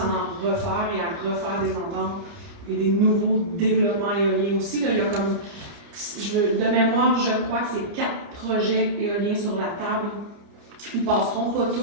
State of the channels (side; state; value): left; late; 29 ms